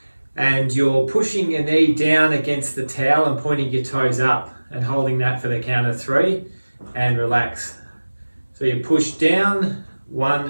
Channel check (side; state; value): both; inverted; correlation -1.00